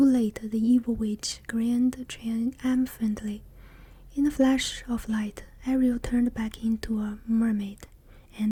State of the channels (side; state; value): both; identical; correlation 1.00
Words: late," the evil witch grinned triumphantly. In a flash of light, Ariel turned back into a mermaid,